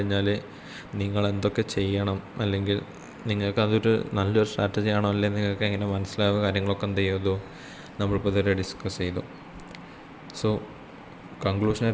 നിങ്ങൾ എന്തൊക്കെ ചെയ്യണം, അല്ലെങ്കിൽ നിങ്ങൾക്കതൊരു നല്ലൊരു സ്ട്രാറ്റജി ആണോ അല്ലെങ്കിൽ നിങ്ങൾക്ക് എങ്ങനെ മനസ്സിലാവുക, കാര്യങ്ങളൊക്കെ എന്ത് ചെയ്തു നമ്മളിപ്പോൾ ഇതുവരെ ഡിസ്കസ് ചെയ്തു. സോ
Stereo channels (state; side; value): identical; both; correlation 1.00